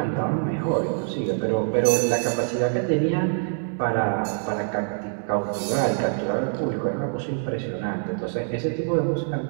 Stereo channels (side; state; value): left; silent; digital silence